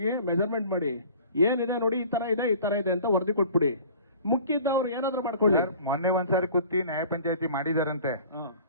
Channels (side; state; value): both; inverted; correlation -0.46